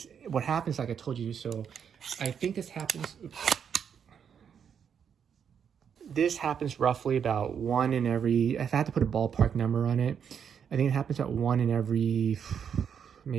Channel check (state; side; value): quieter; left; 7.6 dB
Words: what happens, like I told you, so I think this happens. Oops. This happens roughly about 1 in every, if I had to put a ballpark number on it, I think it happens about 1 in every